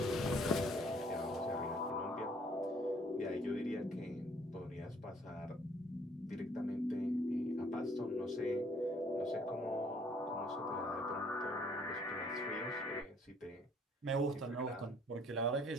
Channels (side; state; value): both; normal; correlation 0.61